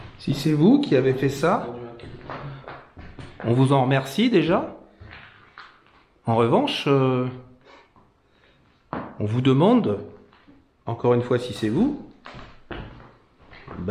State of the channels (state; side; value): identical; both; correlation 1.00